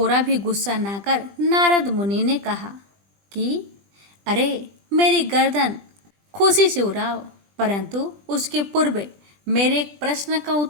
भी गुस्सा ना कर नारद मुनि ने कहा कि अरे, मेरी गर्दन खुशी से उड़ाओ, परंतु उसके पूर्व मेरे एक प्रश्न का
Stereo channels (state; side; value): late; left; 20 ms